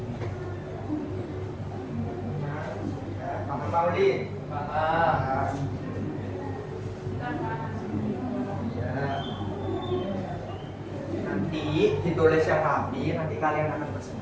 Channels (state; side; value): identical; both; correlation 1.00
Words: Maulid, paham. Ya. Nanti ditulis yang rapi, nanti kalian akan